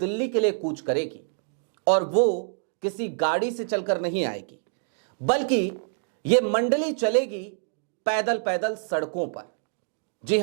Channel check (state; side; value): silent; left; digital silence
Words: के लिए कूच करेगी, और वो किसी गाड़ी से चलकर नहीं आएगी, बल्कि ये मंडली चलेगी पैदल पैदल सड़कों पर। जी